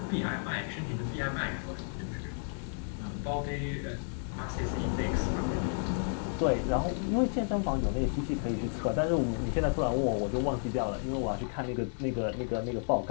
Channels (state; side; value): silent; right; 56 dB below the other